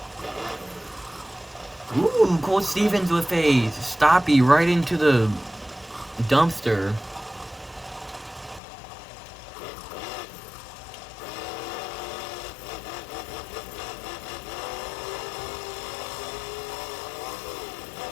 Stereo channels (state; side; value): drops out; right; at 8.6 s